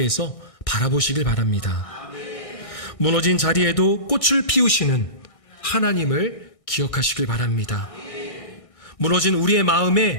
바라보시길 바랍니다. 무너진 자리에도 꽃을 피우시는 하나님을 기억하시길 바랍니다. 무너진 우리의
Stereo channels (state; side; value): late; right; 1.6 ms